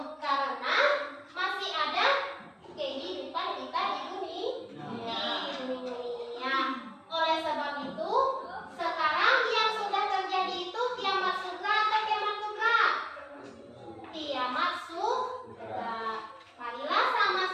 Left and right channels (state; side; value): identical; both; correlation 1.00